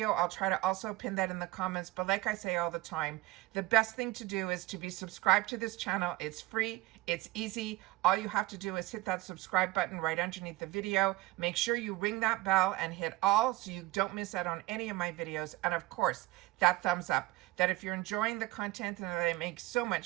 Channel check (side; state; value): left; quieter; 18.7 dB